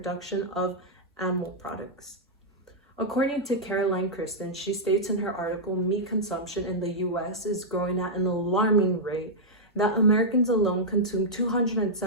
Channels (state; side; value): normal; both; correlation -0.07